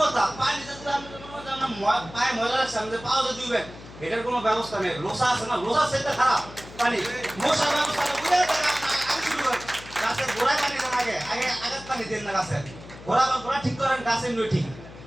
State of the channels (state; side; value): noise; left; hum, 17 dB below the sound